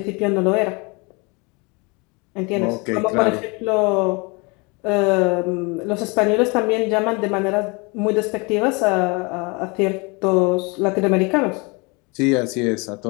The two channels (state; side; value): quieter; right; 28.9 dB